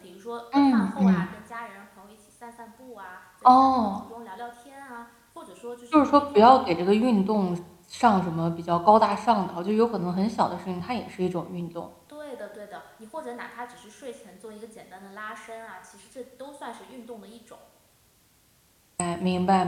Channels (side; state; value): both; identical; correlation 1.00